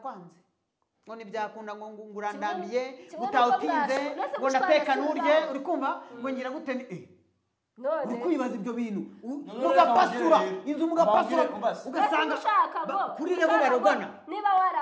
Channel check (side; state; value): both; identical; correlation 1.00